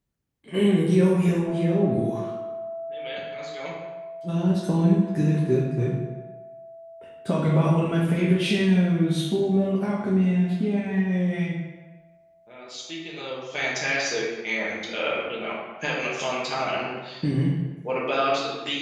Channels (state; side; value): identical; both; correlation 1.00